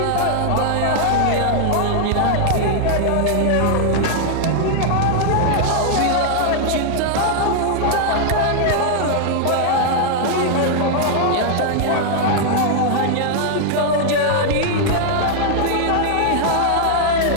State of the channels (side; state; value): both; different; correlation -0.01